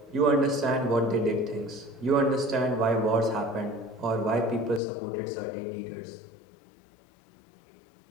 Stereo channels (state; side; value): drops out; right; at 4.8 s